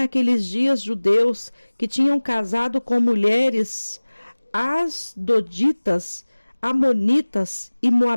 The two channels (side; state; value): both; inverted; correlation -1.00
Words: dias judeus que tinham casado com mulheres asdoditas, amonitas e